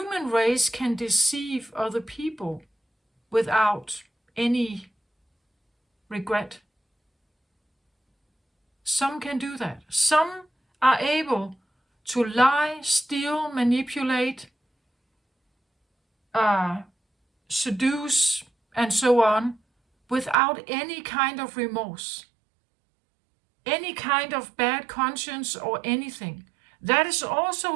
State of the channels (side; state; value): left; drops out; at 20.4 s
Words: race can deceive other people without any regret. Some can do that. Some are able to lie, steal, manipulate, seduce, and so on, without any kind of remorse, any kind of bad conscience or anything. That is